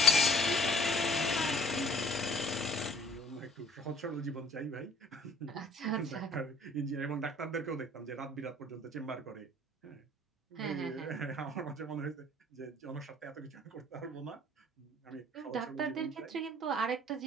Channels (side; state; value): both; normal; correlation 0.52